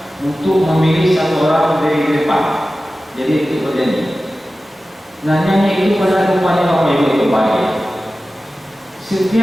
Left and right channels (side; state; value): both; normal; correlation 0.95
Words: untuk memilih satu orang dari depan. Jadi itu berjanji. Nah, nyanyi itu pada rupanya Bapak Ibu itu baik.